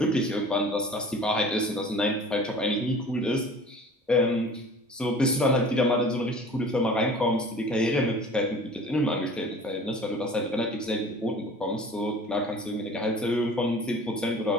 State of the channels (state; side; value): normal; both; correlation 0.44